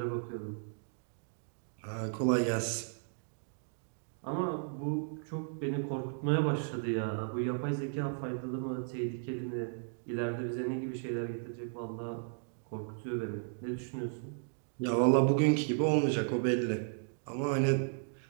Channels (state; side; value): silent; left; digital silence